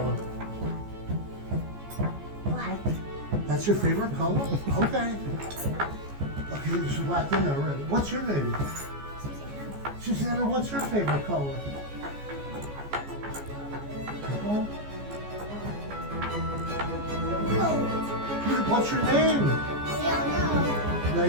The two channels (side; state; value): left; late; 14 ms